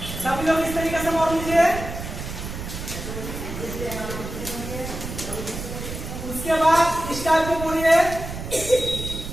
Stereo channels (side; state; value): right; noise; rumble, 8 dB below the sound